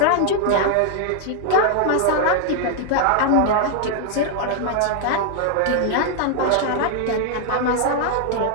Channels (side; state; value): both; different; correlation 0.00